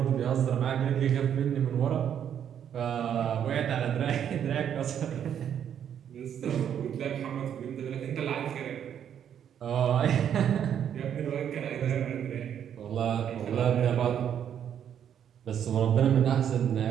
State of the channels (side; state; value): left; quieter; 9.1 dB